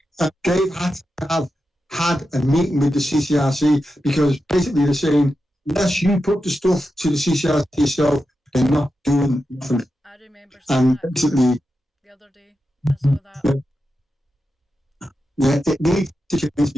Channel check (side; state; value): both; normal; correlation 0.89